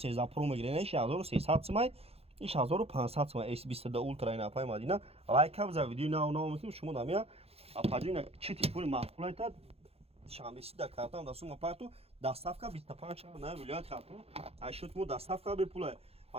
Pro мегирам 1300 сомай این 1500 تومان S22 Ultra این اپای مدینه لایک هم زد ویدیو نه میتونیم شما نمیا اپاجین چه تلفن معقوله تا شما بسید در کارتون دستون اپاتو دستافکا 25 نه ولایت خاطر اشوت مو دستافکا به پول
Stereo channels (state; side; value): late; left; 0.29 ms